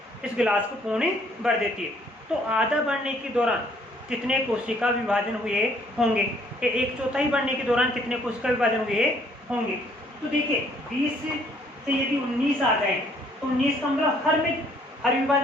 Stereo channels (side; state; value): both; normal; correlation 0.63